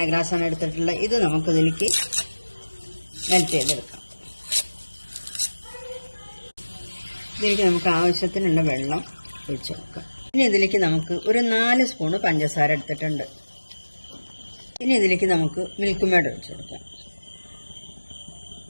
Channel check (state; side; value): inverted; both; correlation -1.00